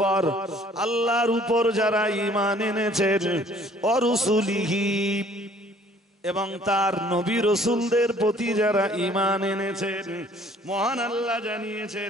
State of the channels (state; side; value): normal; both; correlation 0.57